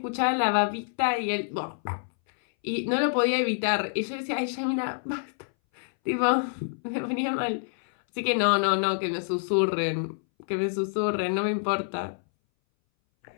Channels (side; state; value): right; silent; 60 dB below the other